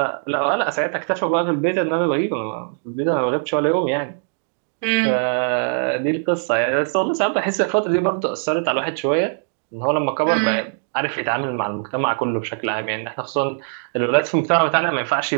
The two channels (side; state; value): left; silent; digital silence